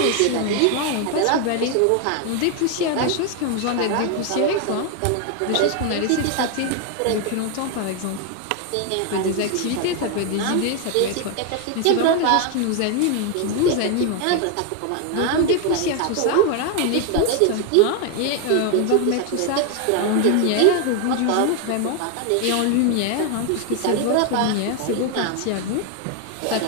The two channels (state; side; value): different; both; correlation 0.01